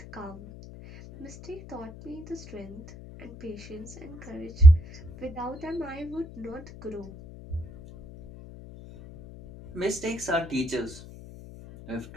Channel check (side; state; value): left; noise; hum, 16 dB below the sound